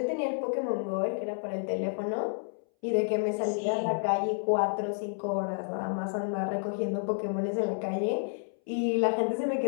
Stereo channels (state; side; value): silent; right; 58 dB below the other